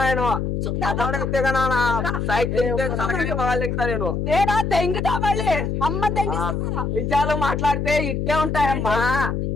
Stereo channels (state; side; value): noise; left; hum, 1 dB below the sound